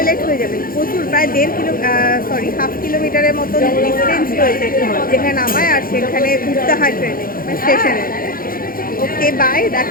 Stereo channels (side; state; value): right; late; 0.42 ms